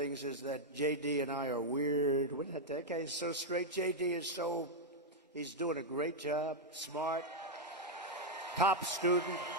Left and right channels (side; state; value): both; normal; correlation -0.02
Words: is that JD and I are weird. That guy is so straight. JD is he's doing a great job, smart, top student,